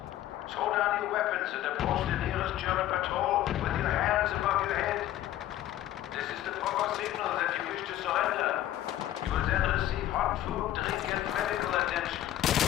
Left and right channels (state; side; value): quieter; right; 13.3 dB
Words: Throw down your weapons and approach the nearest German patrol with your hands above your head. This is the proper signal that you wish to surrender. You will then receive hot food, drink, and medical attention.